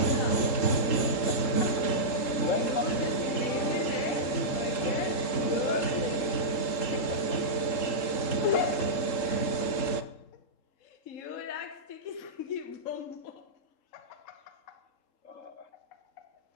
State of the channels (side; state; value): right; late; 3.7 ms